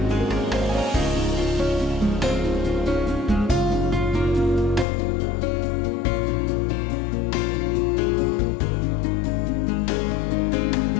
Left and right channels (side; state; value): right; drops out; at 4.9 s